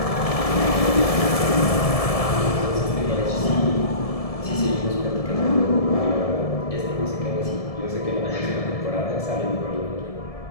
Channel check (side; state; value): right; late; 1.7 ms